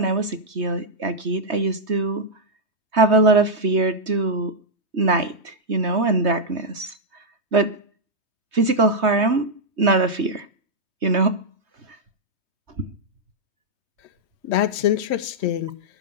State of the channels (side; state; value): left; late; 3.2 ms